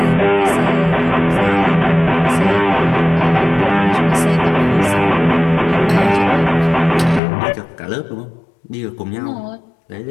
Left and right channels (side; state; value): right; drops out; at 7.2 s